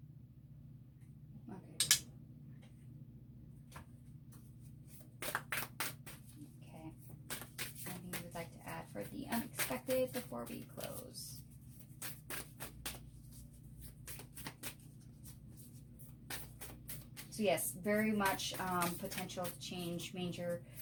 Okay. Anything you would like to add for the unexpected before we close? So yes, very much potential to change major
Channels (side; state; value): both; identical; correlation 1.00